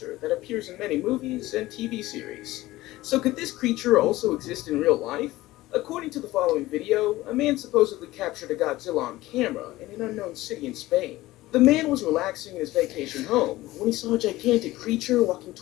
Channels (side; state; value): right; quieter; 17.6 dB